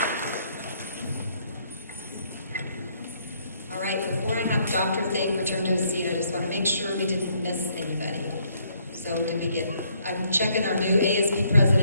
return to a seat, I just want to make sure we didn't miss anybody. So I'm checking our new ASB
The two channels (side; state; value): both; inverted; correlation -0.69